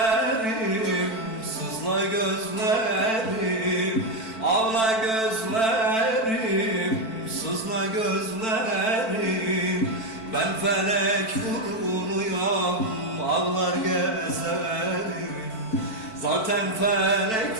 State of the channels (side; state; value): right; late; 4.5 ms